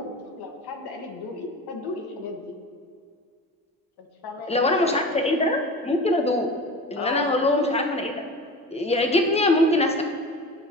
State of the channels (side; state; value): both; normal; correlation 0.33